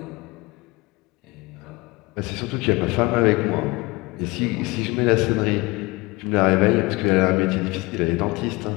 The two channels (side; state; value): right; quieter; 23.5 dB